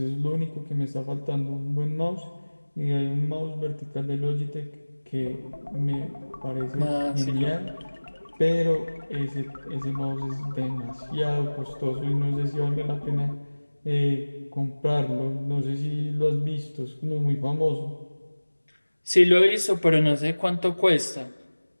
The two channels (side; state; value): both; inverted; correlation -1.00